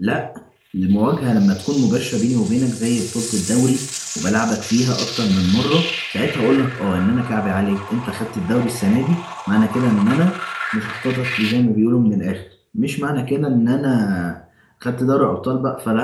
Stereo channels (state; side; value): identical; both; correlation 1.00